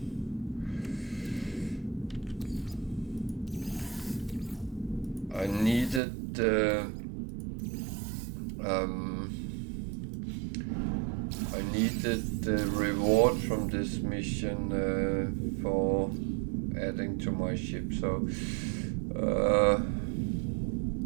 I needed the reward from this mission for adding to my ship, so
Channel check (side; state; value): left; drops out; at 6.0 s